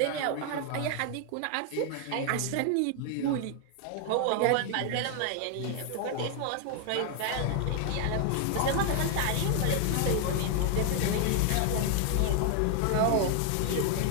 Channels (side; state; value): both; different; correlation 0.00